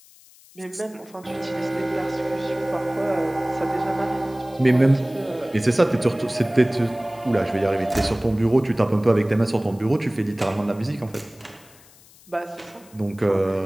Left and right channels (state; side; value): noise; left; hiss, 25 dB below the sound